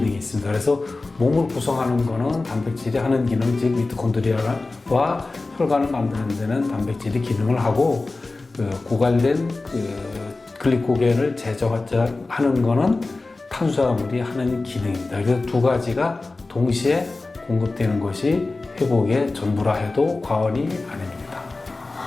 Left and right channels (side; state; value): right; quieter; 3.4 dB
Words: 있습니다. 그래서 몸을 구성하는 거는 단백질이 하는 기능, 즉 미토콘드리아와 혈관을 만드는 데는 단백질이 기능을 하고, 그 고갈된 그 글리코겐을 제거하는 거는 탄수화물이 하는 기능입니다. 그래서 두 가지가 동시에 공급되는 것이 회복의 전부라 해도 과언이 아닙니다.